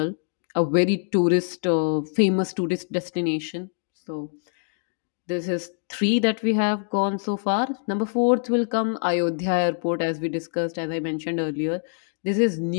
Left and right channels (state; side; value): silent; right; digital silence